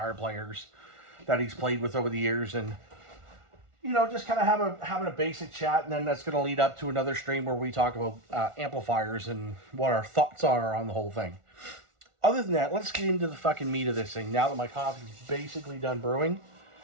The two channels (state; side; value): late; left; 1.4 ms